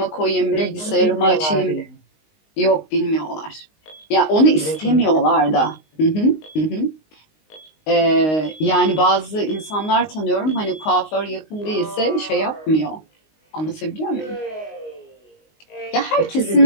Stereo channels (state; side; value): late; right; 19 ms